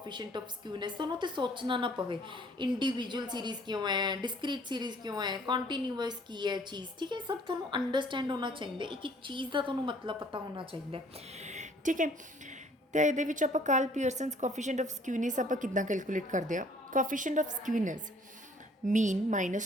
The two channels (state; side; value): normal; both; correlation 0.58